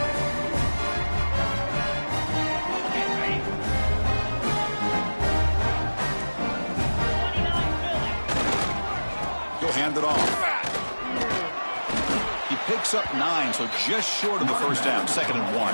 hand it off. He picks up 9, so just short of the first down, 2nd and 1.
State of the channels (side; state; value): both; inverted; correlation -1.00